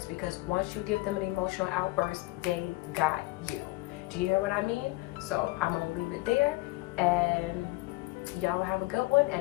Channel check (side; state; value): right; quieter; 21.2 dB